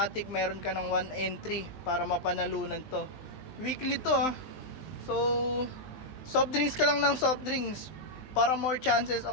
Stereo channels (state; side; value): late; right; 19 ms